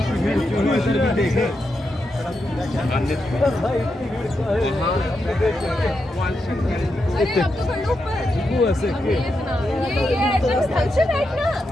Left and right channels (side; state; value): both; normal; correlation 0.85